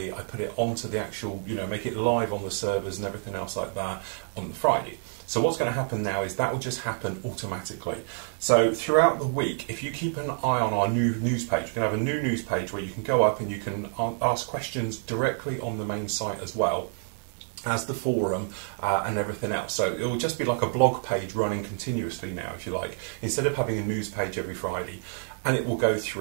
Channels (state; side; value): silent; left; 59 dB below the other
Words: I put it onto the actual, you know, make it live on the servers and everything else like that on the Friday. So what's going to happen now is that will just happen automatically. So throughout the week, if you keep an eye on our new news page, we're going to have a new news page where you can go up and you can ask questions directly on the main site as well as the forum and everything else. So it will just be like a blog page running continuously now, if you like, instead of having a news page every Friday, and it will go